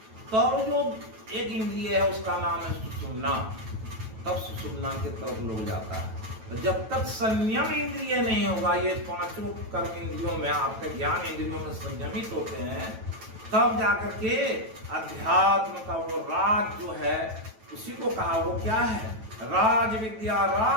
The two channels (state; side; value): late; left; 9.1 ms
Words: तब जो एक इंद्रिय है उसका नाम है सुषुम्ना, तब सुषुम्ना की तरफ लोग जाता है। तो जब तक संयम इंद्रिय नहीं होगा, ये पांचों कर्म इंद्रियों में आपके ज्ञान इंद्रियों में संयमित होते हैं, तब जाकर के अध्यात्म का वो राज जो है, उसी को कहा वो क्या है, राज विद्या